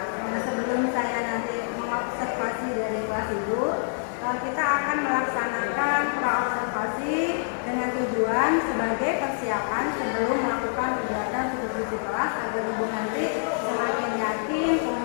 Nah, sebelum saya nanti mengobservasi dari kelas Ibu, kita akan melaksanakan praobservasi dengan tujuan sebagai persiapan sebelum melakukan kegiatan supervisi kelas agar Ibu nanti semakin yakin,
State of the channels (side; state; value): right; silent; digital silence